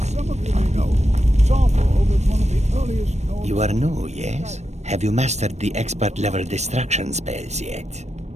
some of you may know, Sawfall was one of the earliest known... You are new, yes? Have you mastered the expert-level destruction spells yet?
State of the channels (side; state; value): left; late; 0.32 ms